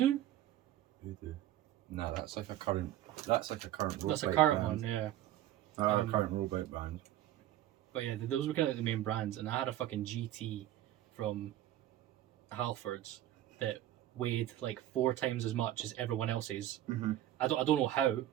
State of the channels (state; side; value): quieter; left; 13.2 dB